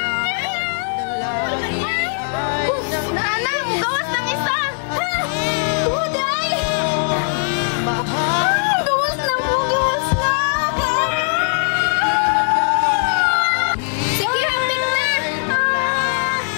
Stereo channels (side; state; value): right; silent; digital silence